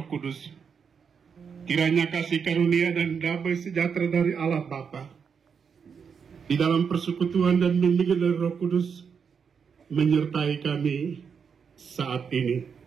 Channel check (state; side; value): quieter; left; 6.5 dB